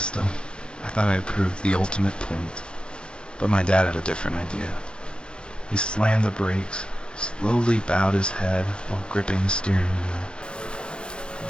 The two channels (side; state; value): right; late; 0.052 ms